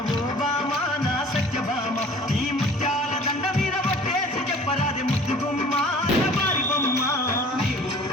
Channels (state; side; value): normal; both; correlation 0.48